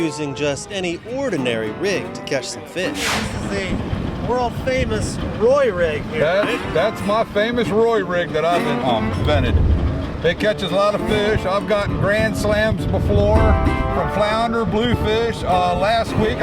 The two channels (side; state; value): both; identical; correlation 1.00